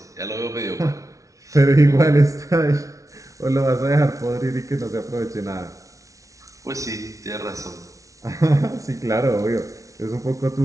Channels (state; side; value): late; left; 0.16 ms